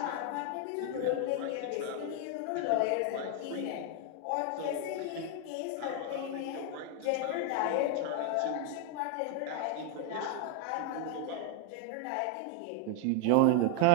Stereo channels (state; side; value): different; both; correlation 0.00